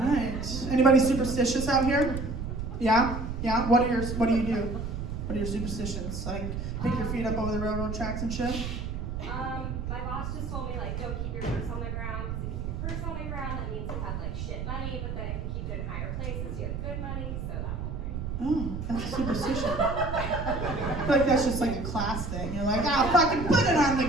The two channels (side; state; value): right; noise; rumble, 4 dB below the sound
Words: Anybody superstitious out here? Yeah? Yeah? What do you do? What are your superstitions? Like, pick your feet up over the railroad tracks and shit? My boss just told me, like, don't keep your purse on the ground, because if you keep your purse on the ground, that means you have, like, shit money, but then if you keep it in higher places, you have good money, so that whole thing. Oh, that's a superstition. I feel like that's just like a class thing. You're like, fucking put it on the